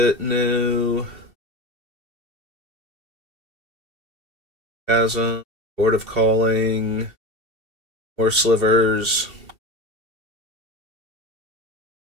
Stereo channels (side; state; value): left; late; 2.7 ms